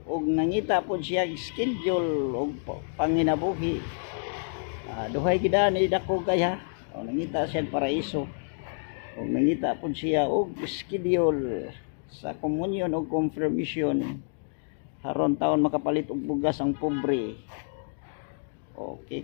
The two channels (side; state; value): right; silent; digital silence